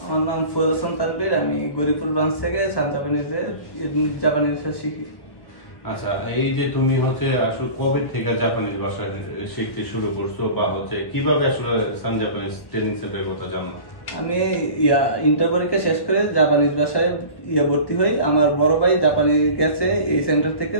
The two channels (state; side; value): late; right; 1.4 ms